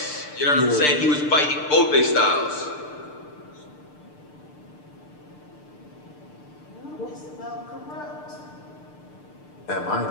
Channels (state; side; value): late; right; 6.7 ms